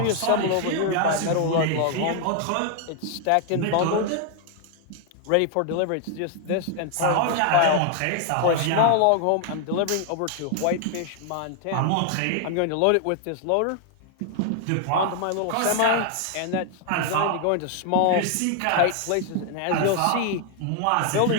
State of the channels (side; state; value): both; different; correlation 0.00